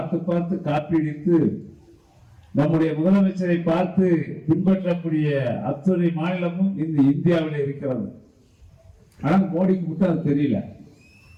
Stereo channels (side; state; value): both; identical; correlation 1.00